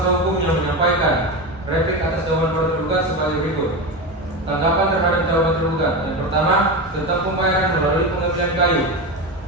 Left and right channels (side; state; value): both; normal; correlation 0.20